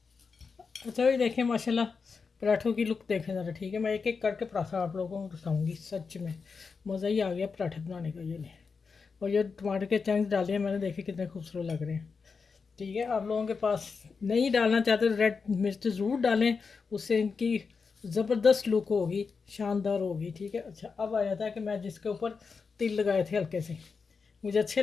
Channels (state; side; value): quieter; right; 5.1 dB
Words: अच्छा ये देखिए माशाल्लाह, पराठों की लुक देखें ज़रा, ठीक है। मैं एक एक करके पराठा आप लोगों को दिखाऊंगी, सच में मज़ा ही आ गया पराठे बनाने का। ये नहीं, और ये टमाटर के चंक्स डाले हैं मैंने, देखे कितने खूबसूरत लग रहे हैं, ठीक है। आप लोगों के पास नहीं डालना चाहते तो रेड मिर्च ज़रूर डालें, उससे इनकी ज़बरदस्त लुक होगी, शानदार होगी, ठीक है। अच्छा, अब आया था कि मैं जिसके ऊपर तिल लगाए थे हल्के से, मुझे अच्छे